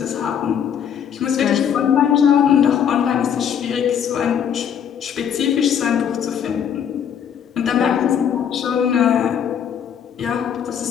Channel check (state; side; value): quieter; right; 8.4 dB